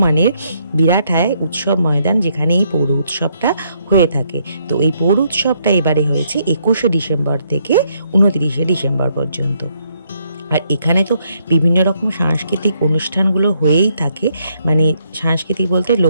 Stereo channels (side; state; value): both; inverted; correlation -0.72